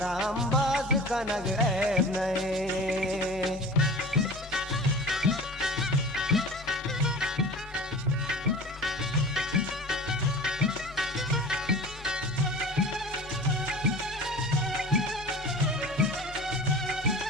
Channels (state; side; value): normal; both; correlation 0.38